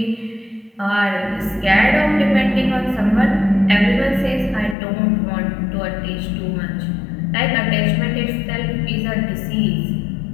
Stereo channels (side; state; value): right; drops out; at 4.8 s